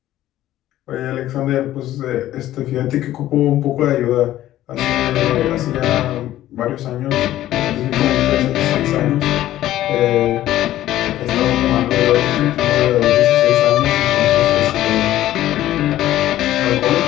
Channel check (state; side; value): quieter; right; 13.8 dB